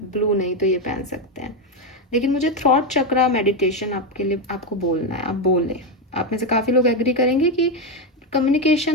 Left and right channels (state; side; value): normal; both; correlation 0.08